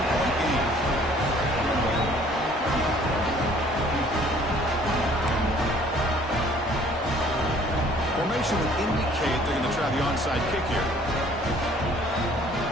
game. Formation would indicate they're going to try the onside kick here.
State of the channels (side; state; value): both; normal; correlation 0.56